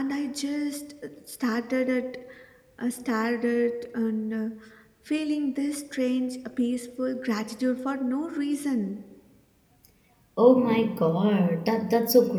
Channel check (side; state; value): both; identical; correlation 1.00